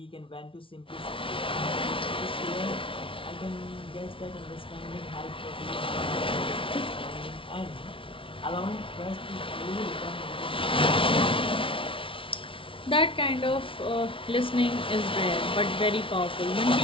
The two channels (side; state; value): right; late; 0.25 ms